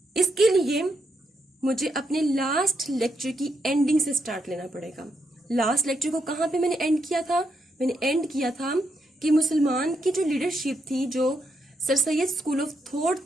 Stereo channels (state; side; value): normal; both; correlation 0.80